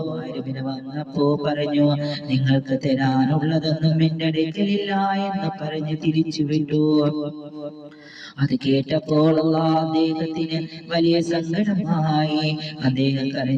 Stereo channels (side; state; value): both; identical; correlation 1.00